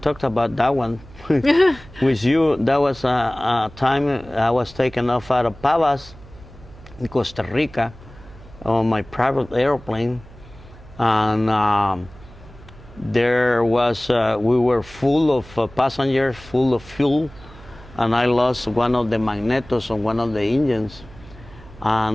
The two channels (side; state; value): right; noise; hum, 20 dB below the sound